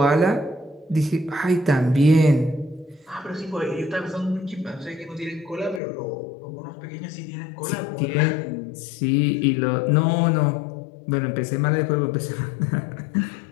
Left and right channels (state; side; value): drops out; right; at 5.8 s